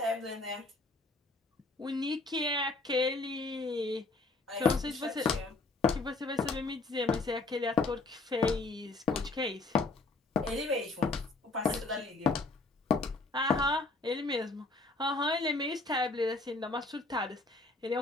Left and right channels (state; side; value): quieter; right; 3.4 dB